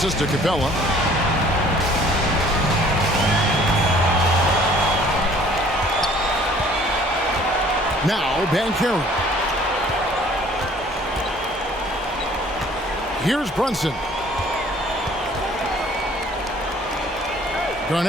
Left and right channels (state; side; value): normal; both; correlation 0.55